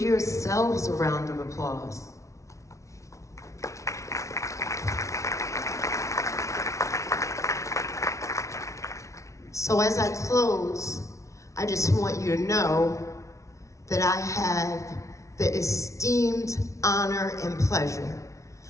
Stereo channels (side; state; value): right; late; 0.14 ms